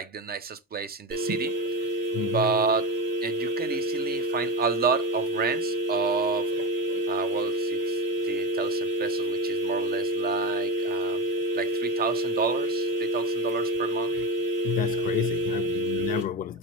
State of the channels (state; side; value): normal; both; correlation 0.20